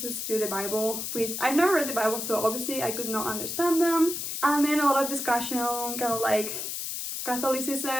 to the Bible, which I've never read the Bible, so obviously I could not understand them. And then a lot of discussion, kind of like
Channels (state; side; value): noise; left; hiss, 4 dB below the sound